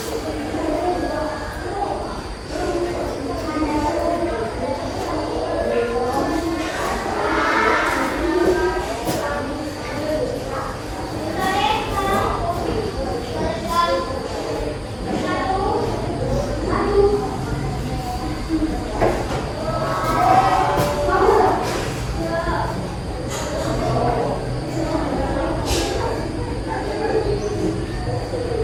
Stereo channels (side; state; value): both; identical; correlation 1.00